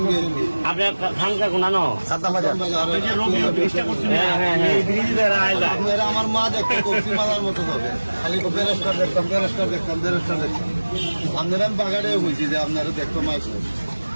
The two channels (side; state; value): both; inverted; correlation -1.00